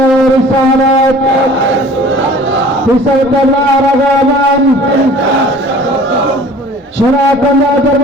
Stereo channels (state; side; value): normal; both; correlation 0.47